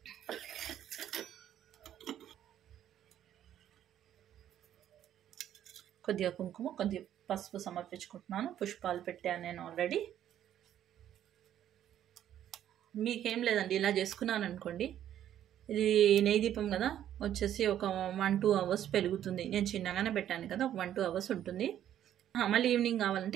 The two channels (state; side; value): quieter; left; 11.0 dB